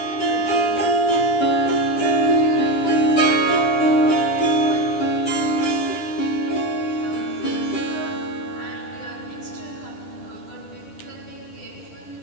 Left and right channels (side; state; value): right; late; 10 ms